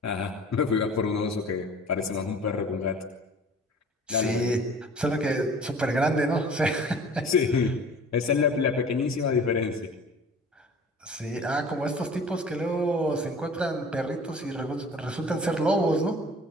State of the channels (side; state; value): both; normal; correlation 0.45